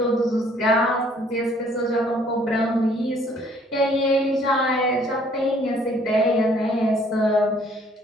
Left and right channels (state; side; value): normal; both; correlation 0.61